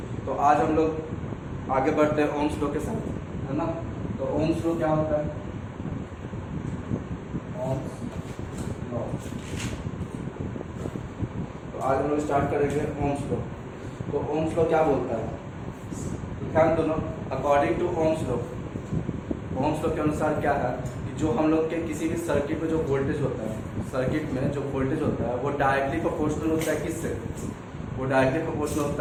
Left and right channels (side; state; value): both; identical; correlation 1.00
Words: तो आज हम लोग आगे बढ़ते हैं ओम्स लॉ के साथ, है ना। तो ओम्स लॉ क्या होता है? Ohm's law. तो आज हम लोग स्टार्ट करेंगे ओम्स लॉ। तो ओम्स लॉ क्या बोलता है? ध्यान दोनों, according to Ohm's law, Ohm's law के अनुसार क्या है कि जो हम लोग के किसी भी सर्किट में जो वोल्टेज होता है, सर्किट में जो वोल्टेज होता है वो डायरेक्टली प्रोपोर्शनल होता है। किससे? वो डायरेक्टली प्रोपोर्शनल